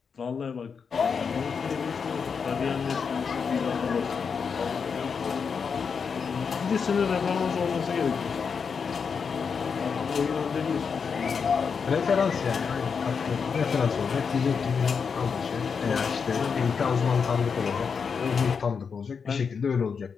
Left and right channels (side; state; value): right; quieter; 6.0 dB